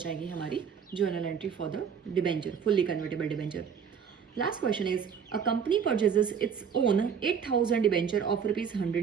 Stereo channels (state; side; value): quieter; left; 7.1 dB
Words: हमारी journal entry for the debenture, fully convertible debenture. Last question is, a company purchases its own 8,000 debenture of